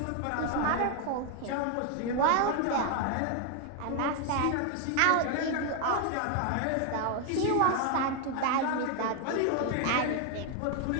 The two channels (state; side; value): different; both; correlation 0.00